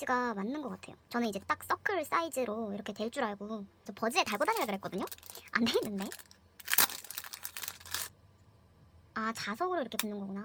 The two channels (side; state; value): both; identical; correlation 1.00